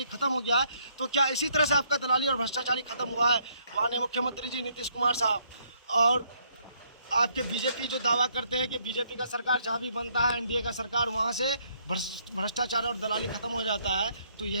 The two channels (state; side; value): inverted; both; correlation -0.69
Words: खत्म हो गया है, तो क्या इसी तरह से आपका दलाली और भ्रष्टाचारी खत्म हुआ है? माननीय मुख्यमंत्री जी नीतीश कुमार साहब और आपके बीजेपी जो दावा करते हैं कि बीजेपी का सरकार जहाँ भी बनता है, एनडीए का सरकार, वहाँ से भ्रष्टाचार और दलाली खत्म हो जाता है। तो